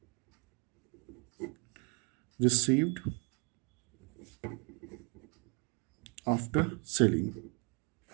received after selling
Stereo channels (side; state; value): left; quieter; 33.5 dB